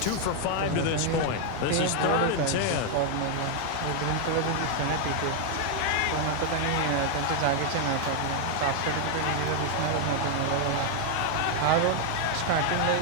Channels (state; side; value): different; both; correlation 0.00